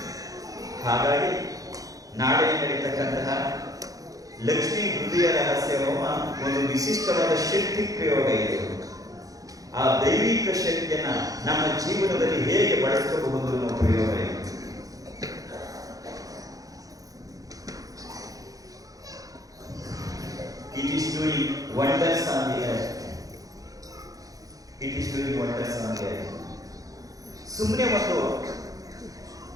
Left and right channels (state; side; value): late; left; 0.17 ms